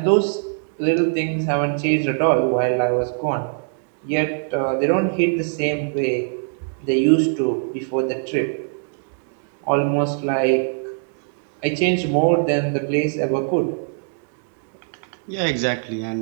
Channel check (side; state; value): left; silent; digital silence